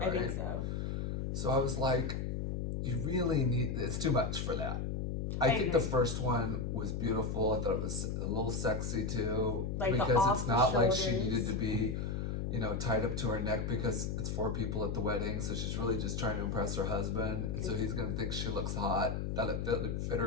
I think so. So I was like, you really it's too much for that. I think the first one was beautiful. I thought it was a little sexy too, like because it's not like she needed to be, tied up to her neck because it's 4 people at the wedding. So she's really just trying to impress her husband, and so he's gonna think she looks hot. That it fit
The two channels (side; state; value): left; noise; hum, 2 dB below the sound